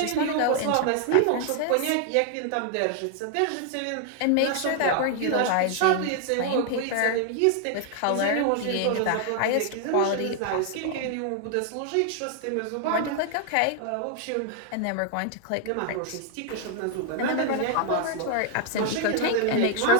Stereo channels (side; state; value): both; different; correlation 0.00